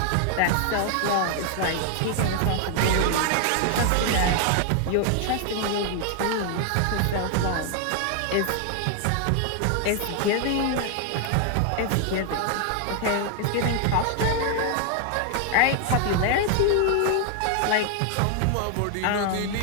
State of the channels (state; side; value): different; both; correlation 0.00